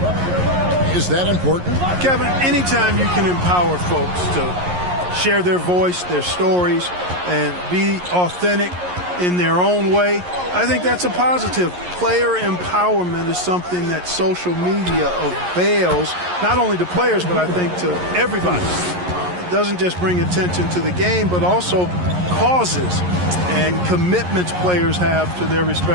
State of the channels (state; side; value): late; left; 11 ms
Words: Is that important? Kevin, anytime you can empower folks to share their voice, their stories, and be authentic in their own way, I think that's a positive. Player empowerment is something that social media avails, not only to players, but I think to everybody. It doesn't just bring attention to the game, but also causes and commitments players have to their